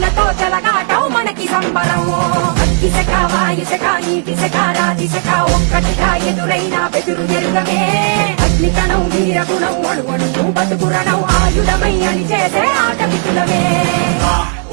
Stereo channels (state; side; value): silent; left; 62 dB below the other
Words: చెలగాటం మనకి సంబరం అగ్గిశక వాయుశక నీటిశక రాతిశక ఒక్కటిగా ఎదురైన బెదురు ఎరుగమే అగ్నికణం వీరగుణం అణువణువు బతుకురణం ఆయుధమై అని చేసే ఆట విపులమే